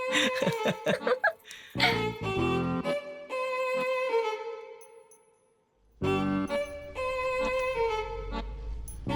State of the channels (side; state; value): both; identical; correlation 1.00